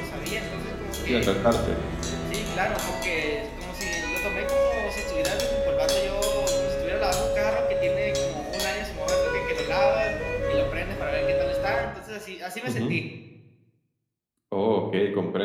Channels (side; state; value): both; identical; correlation 1.00